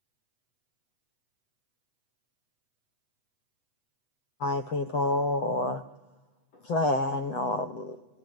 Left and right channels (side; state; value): right; late; 8.1 ms